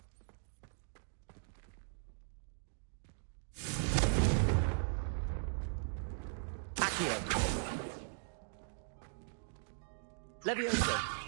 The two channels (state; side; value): silent; left; digital silence